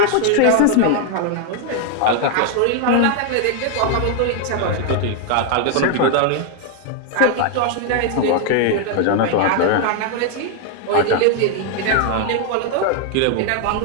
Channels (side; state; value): both; different; correlation 0.00